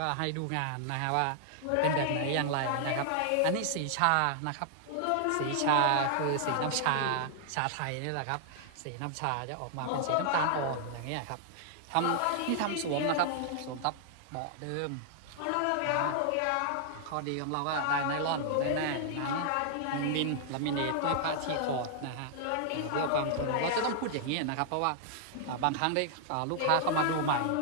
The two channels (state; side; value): different; both; correlation -0.01